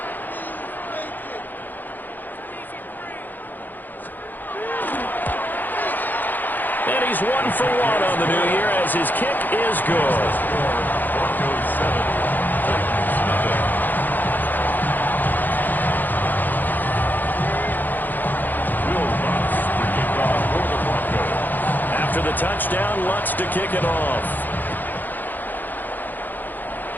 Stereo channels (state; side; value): late; right; 0.087 ms